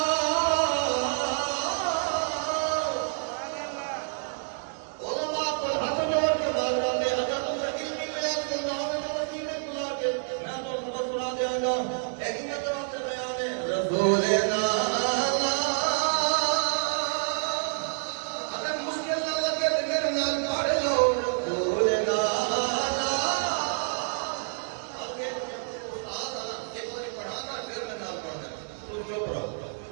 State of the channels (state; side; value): silent; left; digital silence